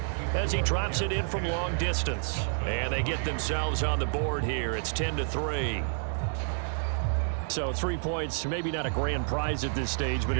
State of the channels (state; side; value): silent; left; digital silence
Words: as he drops it in from long distance. And they get themselves on the board here. It's 10-3. So 3 points, maybe not a grand prize at this stage, but